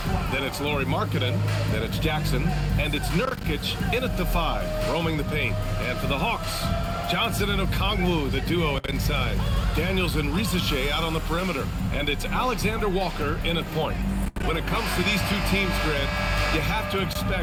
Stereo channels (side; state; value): both; identical; correlation 1.00